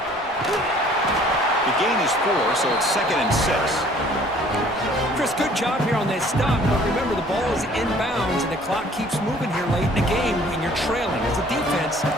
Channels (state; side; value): normal; both; correlation 0.55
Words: The gain is 4, so it's 2nd and 6. Chris, good job here on that stop, but remember the ball is inbounds and the clock keeps moving here late in the game when you're trailing. As a defense,